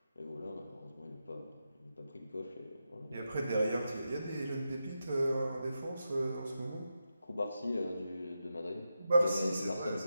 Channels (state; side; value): inverted; both; correlation -0.88